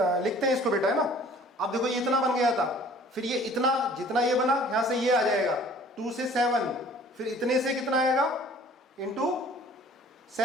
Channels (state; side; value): normal; both; correlation 0.52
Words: हैं इसको बेटा, है ना। अब देखो ये इतना बन गया था, फिर ये इतना, जितना ये बना यहां से ये आ जाएगा 2 से 7, फिर इतने से कितना आएगा? इंटू